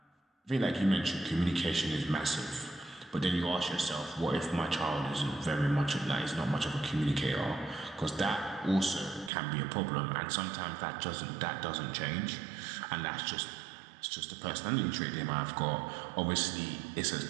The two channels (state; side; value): drops out; left; at 9.3 s